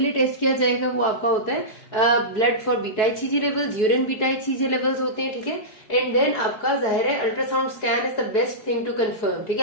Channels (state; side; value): late; right; 4.7 ms